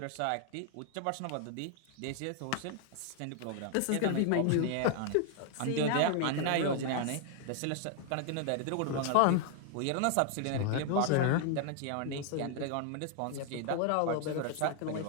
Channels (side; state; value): both; different; correlation 0.00